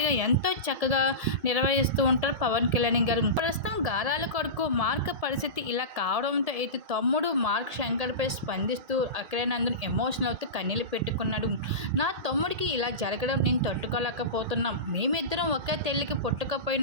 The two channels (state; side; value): late; left; 1.7 ms